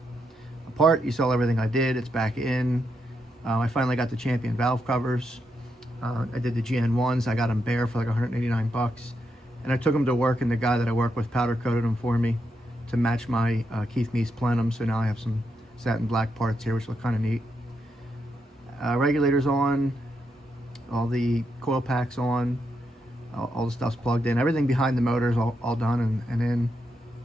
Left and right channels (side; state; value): both; normal; correlation 0.82